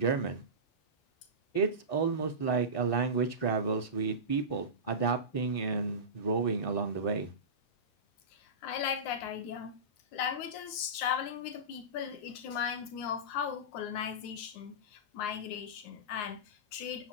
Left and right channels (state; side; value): late; right; 9.6 ms